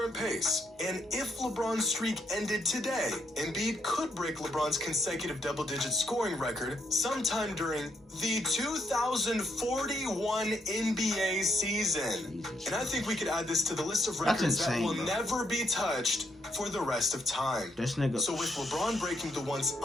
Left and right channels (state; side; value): normal; both; correlation 0.76